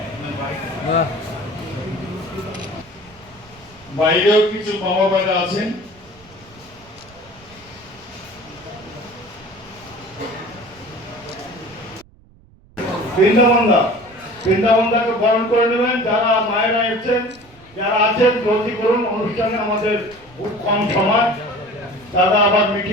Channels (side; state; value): right; noise; rumble, 26 dB below the sound